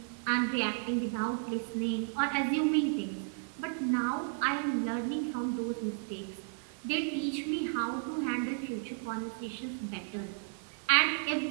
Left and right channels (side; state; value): left; silent; digital silence